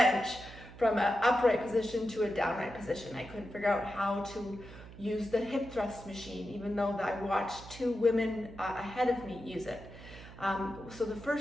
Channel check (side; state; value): right; noise; hum, 16 dB below the sound